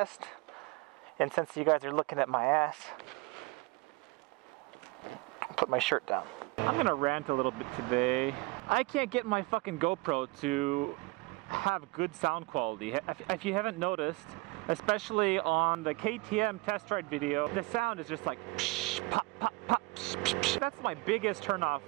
And since you guys are looking at my ass, I'll put my shirt down. I'm gonna rant a little bit today. I can't get my fucking GoPro to have good sound quality. If you haven't noticed, especially on the KTM test ride video, the sound is just like psh, pop, pop, pop, psh, psh, psh. That's my biggest turnoff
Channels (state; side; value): quieter; left; 24.7 dB